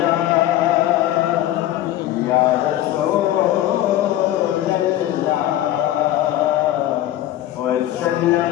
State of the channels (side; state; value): right; quieter; 13.6 dB